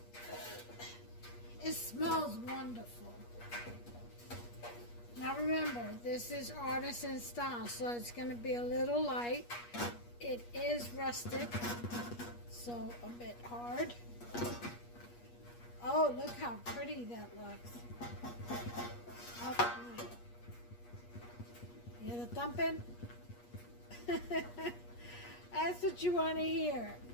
It smells wonderful. Now remember, this is artisan style, so it's going to be a little light. It is rustic, so a bit hard. Oh, look how pretty that looks. Oh, you hear the thumping? That's what you want to hear.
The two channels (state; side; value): late; right; 8.4 ms